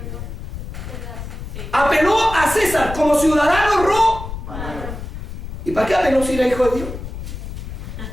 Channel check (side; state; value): left; noise; rumble, 8 dB below the sound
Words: Apeló a César como ciudadano romano. ¿Y para qué apeló si era hijo de Dios?